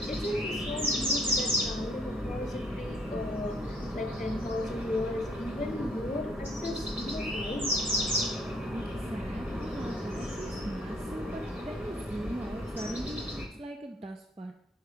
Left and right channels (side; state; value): both; normal; correlation 0.62